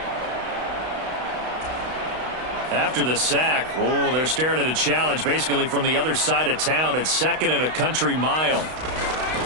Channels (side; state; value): left; late; 32 ms